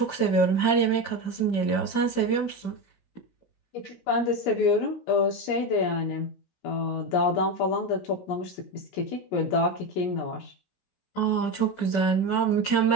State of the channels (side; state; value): right; late; 17 ms